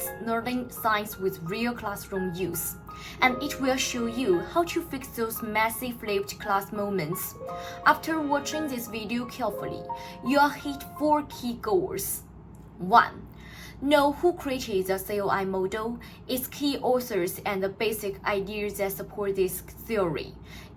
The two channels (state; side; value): identical; both; correlation 1.00